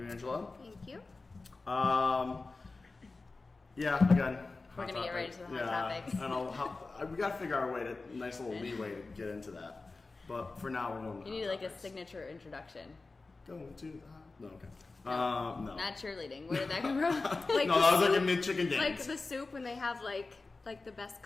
Angela. Thank you. Yeah, again, We're gonna get right into the hot topics. I know we got to figure out a way nice little leeway to get into that. But for now, we're going. You need like a signature introduction. Going to the no, okay. No. Not cheerleading. Where did that come from? No, that was like a mid-chicken dance. Like the soup when they have like the best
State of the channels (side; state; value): right; quieter; 3.6 dB